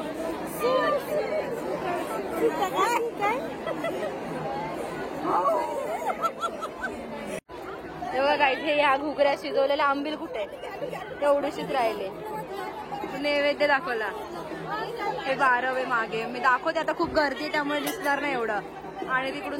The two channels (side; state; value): both; identical; correlation 1.00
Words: तेव्हा काय हे ह्या घुगऱ्या शिजवलेल्या आंबील कुठे तेवढीशीच राहिले. नैवेद्य दाखवला. हे 12 मागे मी दाखवते. आता खूप गर्दी त्यामुळे दिसणार नाही एवढं. आणि